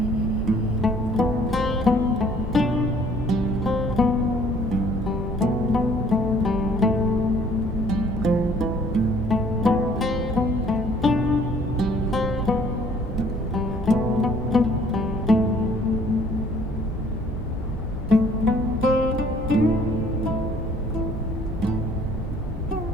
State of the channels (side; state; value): both; normal; correlation 0.58